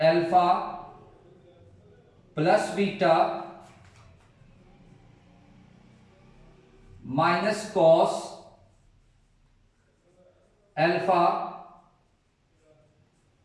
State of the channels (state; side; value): identical; both; correlation 1.00